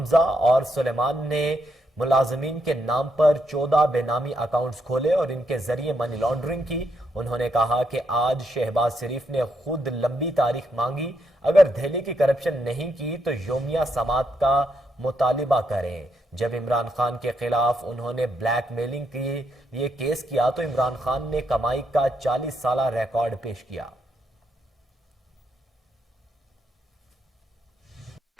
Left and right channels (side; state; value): both; normal; correlation 0.78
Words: اور سلیمان نے ملازمین کے نام پر 14 بے نامی اکاؤنٹس کھولے اور ان کے ذریعے منی لانڈرنگ کی۔ انہوں نے کہا کہ آج شہباز شریف نے خود لمبی تاریخ مانگی، اگر دہلی کی کرپشن نہیں کی تو یومیہ سماعت کا مطالبہ کریں۔ جب عمران خان کے خلاف انہوں نے بلیک میلنگ کے لیے کیس کیا تو عمران خان نے کمائی کا 40 سالہ ریکارڈ پیش کیا۔